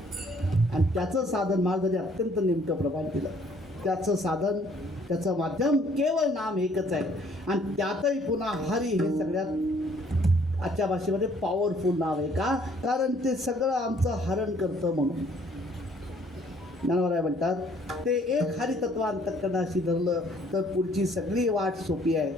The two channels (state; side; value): normal; both; correlation 0.61